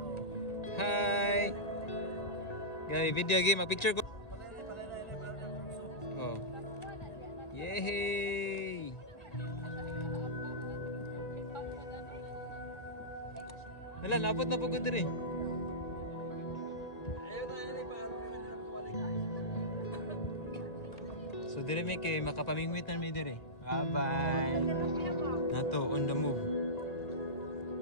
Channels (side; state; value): right; late; 1.9 ms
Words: Hi! Gabi, video game, mag-picture ko. Oh. Yay! Hala, napot na po ko diri. So, diri may kay makapamingwit na mi diri. Bye-bye! Nato, on the move.